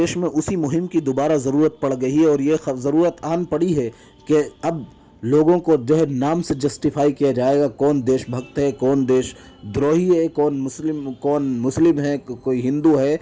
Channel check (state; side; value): identical; both; correlation 1.00